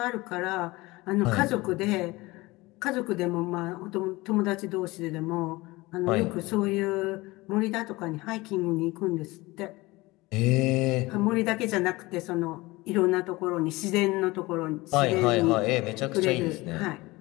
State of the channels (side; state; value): right; quieter; 21.4 dB